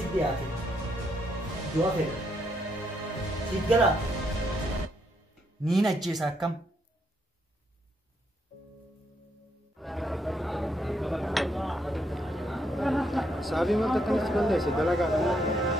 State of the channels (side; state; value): both; normal; correlation 0.76